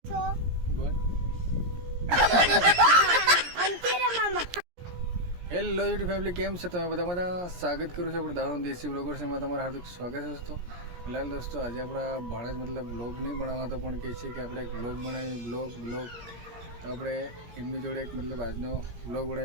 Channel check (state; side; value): late; left; 17 ms